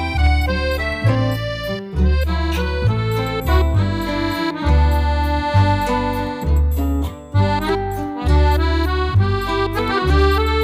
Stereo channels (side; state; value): both; identical; correlation 1.00